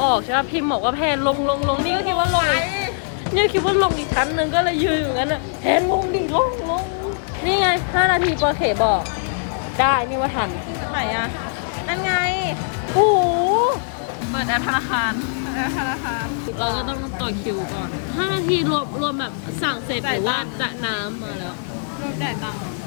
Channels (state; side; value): silent; right; digital silence